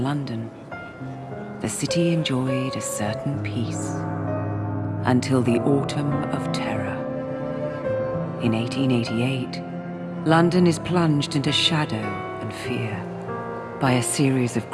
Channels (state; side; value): identical; both; correlation 1.00